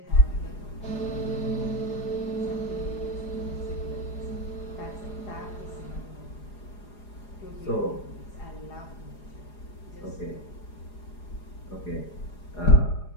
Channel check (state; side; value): late; right; 4.9 ms